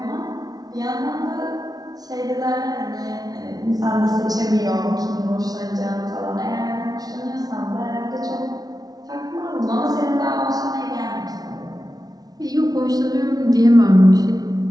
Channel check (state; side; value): late; left; 0.19 ms